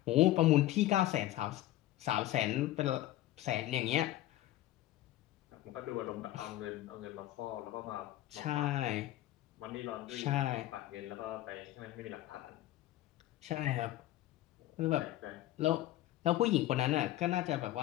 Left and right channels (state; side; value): quieter; right; 15.0 dB